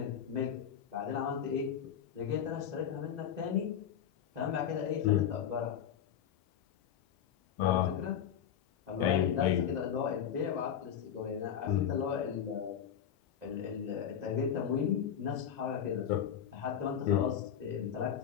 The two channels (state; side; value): quieter; right; 9.0 dB